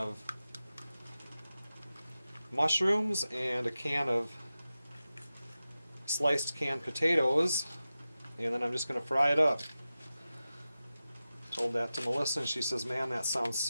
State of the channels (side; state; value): both; inverted; correlation -0.94